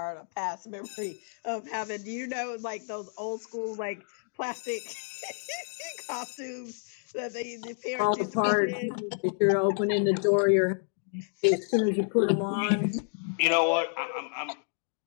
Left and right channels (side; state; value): right; silent; digital silence